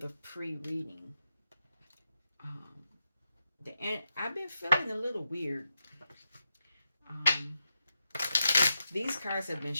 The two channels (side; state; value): both; inverted; correlation -0.86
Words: pre-reading. Um, I've been feeling a little weird. Um, these cards have been